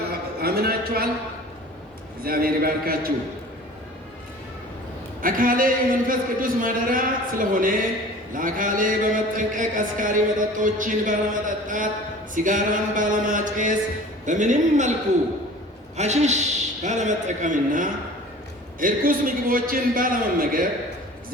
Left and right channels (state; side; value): normal; both; correlation 0.43